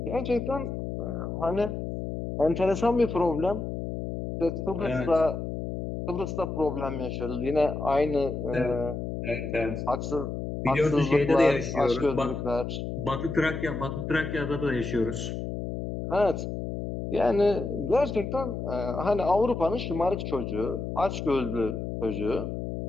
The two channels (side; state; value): left; noise; hum, 5 dB below the sound